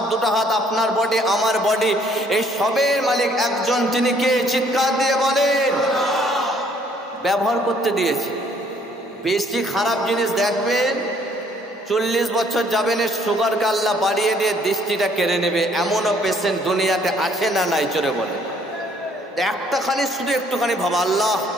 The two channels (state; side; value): normal; both; correlation 0.63